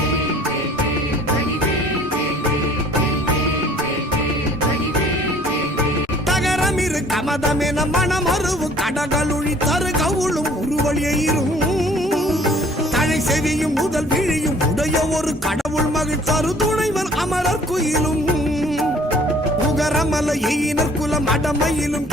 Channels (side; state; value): both; normal; correlation 0.55